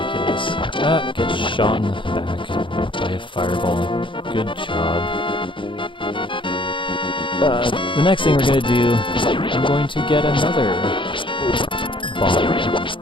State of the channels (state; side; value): late; right; 0.24 ms